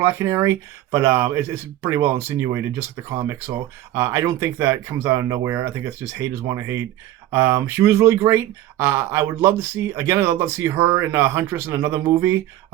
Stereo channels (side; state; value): left; quieter; 13.7 dB